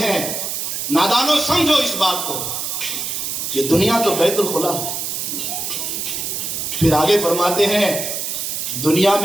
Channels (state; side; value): noise; right; hiss, 3 dB below the sound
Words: ہیں نادانو سمجھو اس بات کو، یہ دنیا تو بیت الخلا ہے. پھر آگے فرماتے ہیں دنیا